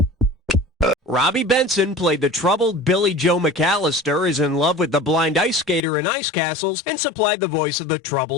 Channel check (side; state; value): right; drops out; at 5.8 s